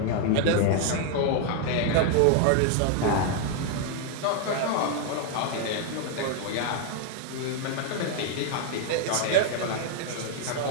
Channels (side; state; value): both; different; correlation 0.00